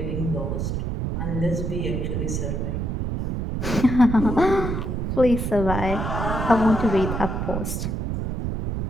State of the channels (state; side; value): noise; right; rumble, 2 dB below the sound